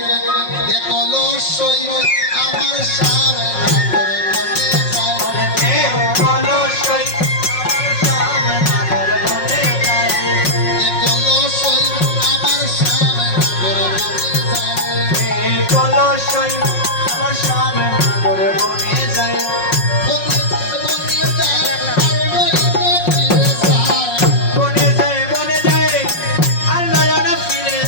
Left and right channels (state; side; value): late; right; 5.5 ms